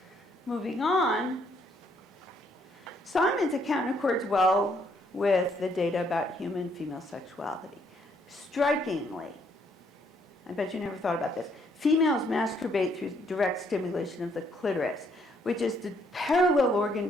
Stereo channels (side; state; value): both; normal; correlation 0.69